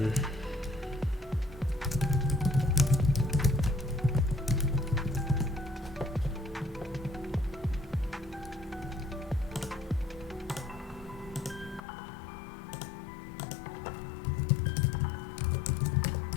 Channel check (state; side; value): drops out; right; at 11.8 s